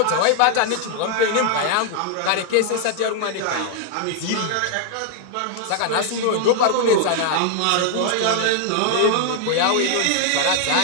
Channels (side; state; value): both; different; correlation 0.00